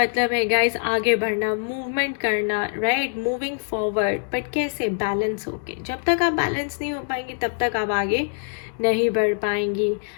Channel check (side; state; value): right; silent; digital silence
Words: है गाइस आगे बढ़ना, मूवमेंट करना, राइट? मूविंग फॉरवर्ड, बट कैसे? बैलेंस होके। जब तक आप बैलेंस नहीं हो पाएंगे तब तक आप आगे नहीं बढ़ पाएंगी,